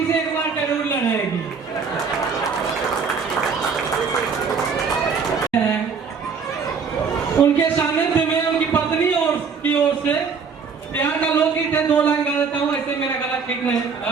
से एक बार जरूर लड़ेगी। उनके सानिध्य में उनकी पत्नी और की ओर से प्यार का लोकगीत है, 2 लाइन गा देता हूँ, ऐसे मेरा गला ठीक नहीं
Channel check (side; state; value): left; quieter; 5.6 dB